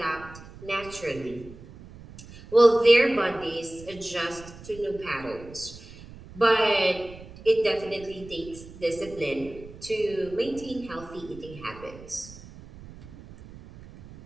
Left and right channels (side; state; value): right; noise; rumble, 17 dB below the sound